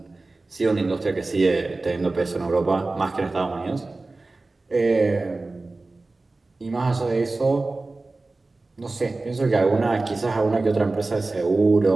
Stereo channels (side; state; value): left; quieter; 3.3 dB